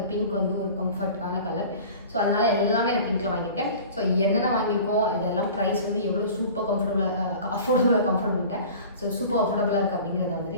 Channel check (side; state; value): both; inverted; correlation -0.41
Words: பிங்க் வந்து ஒரு கம்ஃபர்ட்டான கலர். ஸோ அதனால் எல்லாமே நான் பிங்க்கில் வாங்கியிருக்கேன். ஸோ என்னென்ன வாங்கியிருக்கோம், இதெல்லாம் ப்ரைஸ் வந்து எவ்வளோ சூப்பர் கம்ஃபர்டபுளாக ஸோ சூப்பர் அஃபோர்டபுளாக இருக்குது அப்படிங்கிறத